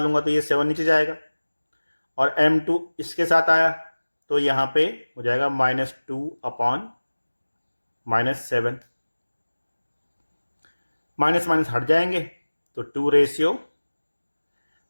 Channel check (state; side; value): inverted; both; correlation -1.00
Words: तो ये 7 नीचे जाएगा और m2 इसके साथ आया तो यहाँ पे हो जाएगा -2 अपॉन -7, माइनस माइनस हट जाएंगे तो